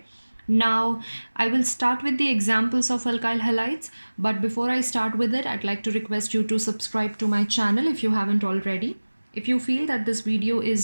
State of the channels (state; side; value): inverted; both; correlation -1.00